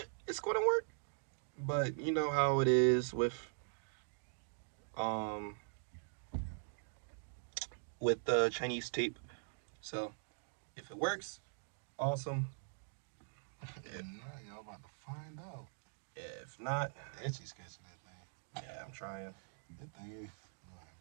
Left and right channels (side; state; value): left; silent; digital silence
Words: it's gonna work. But you know how it is with the Chinese tape. So if it works, awesome. If not, y'all about to find out. If not, Itchy sketching that thing. Yeah, I'm trying. That thing is.